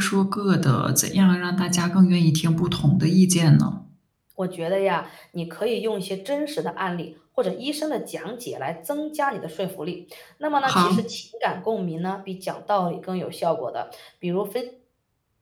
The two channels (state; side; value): identical; both; correlation 1.00